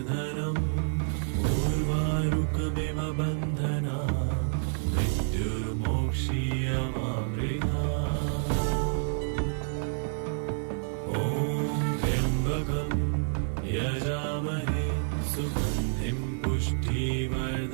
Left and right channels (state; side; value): silent; left; 58 dB below the other